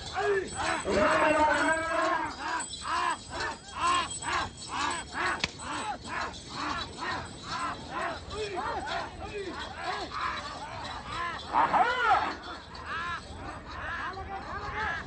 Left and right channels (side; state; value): both; identical; correlation 1.00